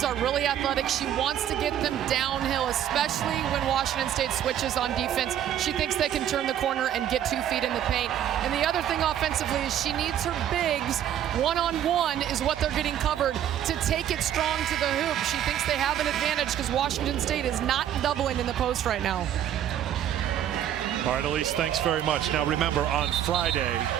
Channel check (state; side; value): quieter; left; 10.6 dB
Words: are really athletic. She wants to get them downhill, especially when Washington State switches on defense. She thinks they can turn the corner and get 2 feet in the paint. And the other thing offensively is she needs her bigs. One-on-one is what they're getting covered to take it strong to the hoop. She thinks they have an advantage because Washington State is not doubling in the post right now. All right, Elise, thanks very much. Now remember, on Friday,